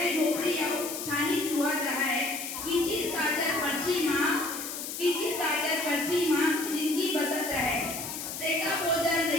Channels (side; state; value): left; noise; hiss, 7 dB below the sound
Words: झोपड़ी आओ, छानी चुहत रहा है, कीचिर काजर पर्ची माँ, कीचिर काजर पर्ची माँ, जिंदगी बसत रहे। सेका भोजन